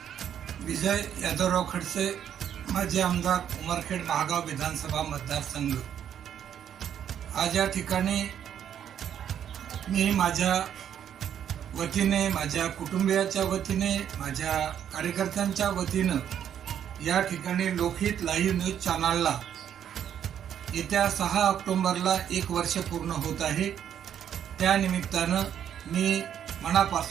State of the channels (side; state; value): left; quieter; 9.4 dB